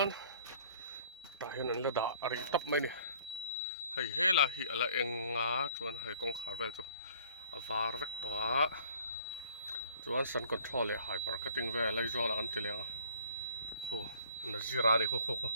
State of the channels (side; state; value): both; inverted; correlation -0.56